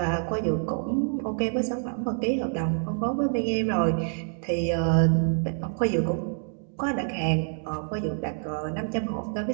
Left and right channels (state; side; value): silent; left; 55 dB below the other